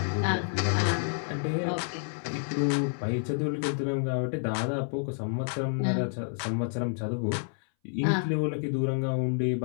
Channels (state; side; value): silent; right; 58 dB below the other